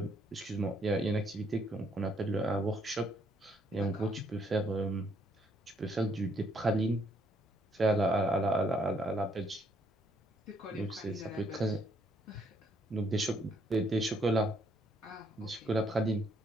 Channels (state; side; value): normal; both; correlation 0.70